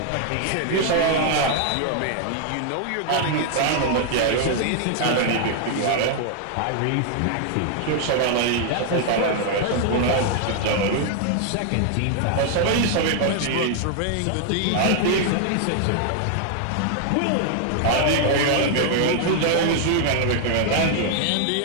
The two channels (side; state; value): both; different; correlation 0.00